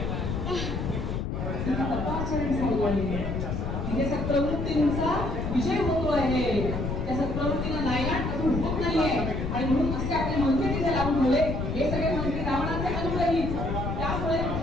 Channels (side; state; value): left; noise; rumble, 3 dB below the sound